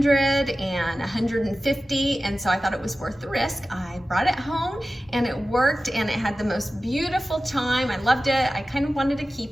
and 150. And so I thought it was worth the risk. I brought it home and it worked, and it had the most beautiful chime. I loved it. I kind of wanted to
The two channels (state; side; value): normal; both; correlation 0.95